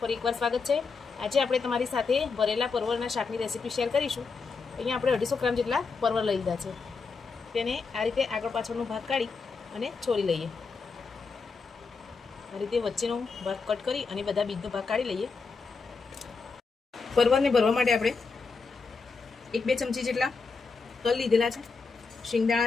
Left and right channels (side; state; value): right; quieter; 4.7 dB